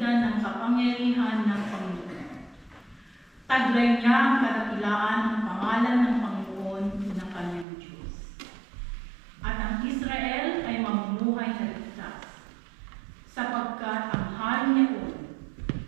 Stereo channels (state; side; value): drops out; left; at 7.7 s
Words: ng kapangyarihan ng Panginoon. Taglay niya ang kadakilaan ng pangalan ng Panginoon ng kanyang Diyos. At ang Israel ay mamumuhay na ligtas, sapagkat ang hari niyon